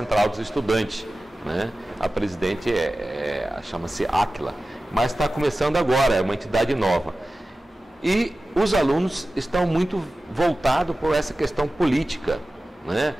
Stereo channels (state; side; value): normal; both; correlation 0.95